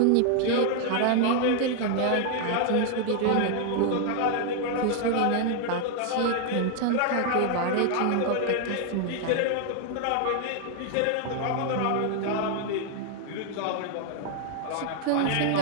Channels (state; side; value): different; both; correlation 0.00